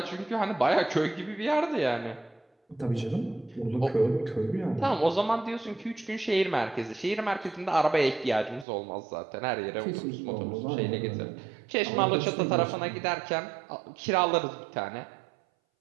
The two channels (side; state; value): left; drops out; at 8.7 s